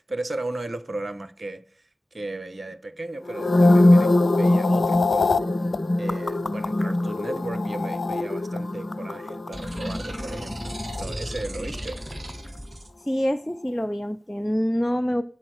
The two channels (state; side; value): normal; both; correlation 0.97